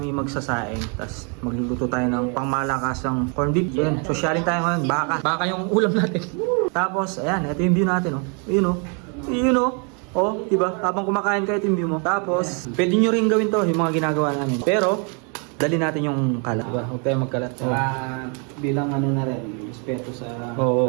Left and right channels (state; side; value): quieter; left; 37.0 dB